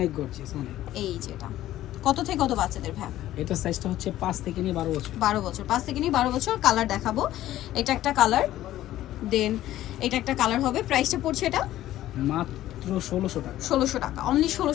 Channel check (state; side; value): quieter; right; 13.9 dB